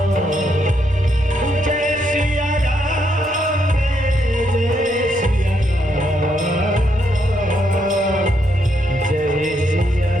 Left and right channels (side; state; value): left; noise; rumble, 25 dB below the sound